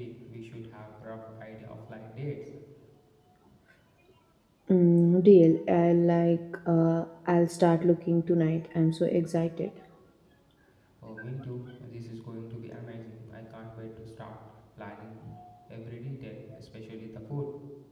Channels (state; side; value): identical; both; correlation 1.00